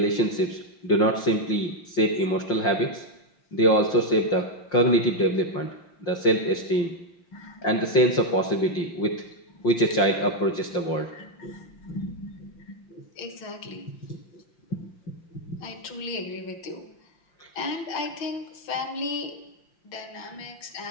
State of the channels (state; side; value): late; right; 5.8 ms